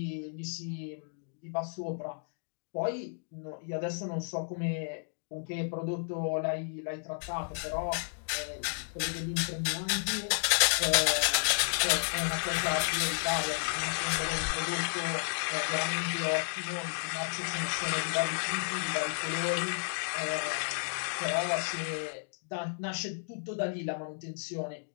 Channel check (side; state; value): right; silent; digital silence